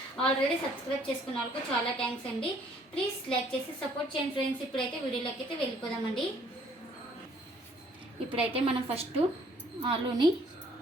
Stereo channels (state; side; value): normal; both; correlation 0.61